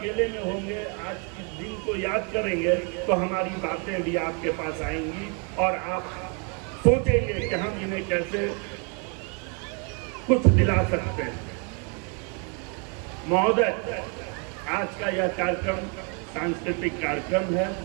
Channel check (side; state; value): left; quieter; 36.5 dB